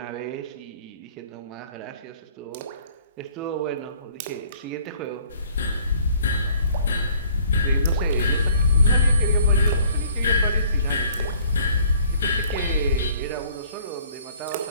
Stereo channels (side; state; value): both; inverted; correlation -0.56